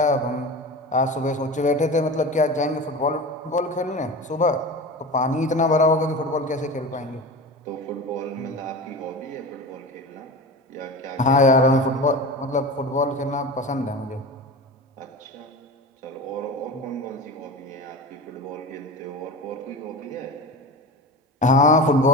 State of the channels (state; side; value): normal; both; correlation 0.30